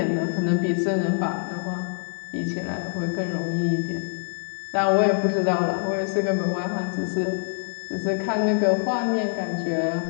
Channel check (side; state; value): right; silent; digital silence